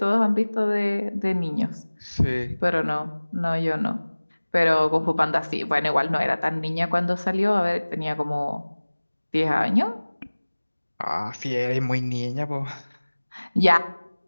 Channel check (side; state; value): both; inverted; correlation -1.00